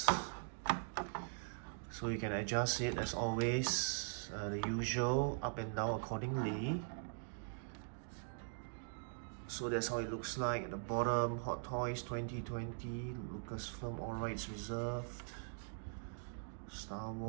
So you can adjust it as always, the usual, up and down accordingly. So that's how it looks like. At the bottom, Hot Toys 2020, Lucasfilm All Rights Reserved, Star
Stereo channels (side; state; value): left; silent; digital silence